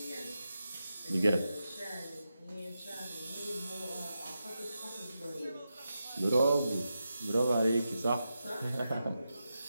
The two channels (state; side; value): inverted; both; correlation -0.89